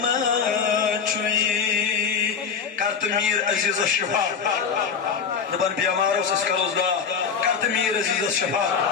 چوئی کرت میر عزیز الشفا دبن بیماروں سے سکروز گا کرت میر عزیز الشفا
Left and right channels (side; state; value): right; quieter; 6.5 dB